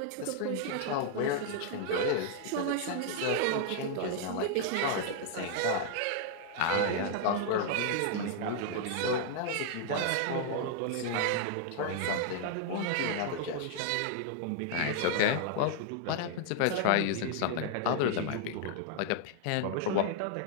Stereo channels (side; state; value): both; different; correlation 0.00